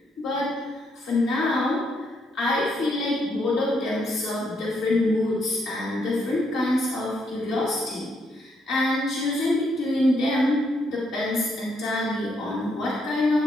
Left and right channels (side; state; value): both; normal; correlation 0.75